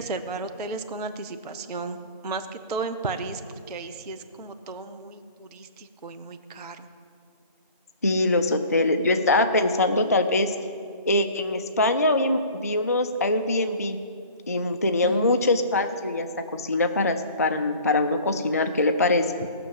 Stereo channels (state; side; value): inverted; both; correlation -0.45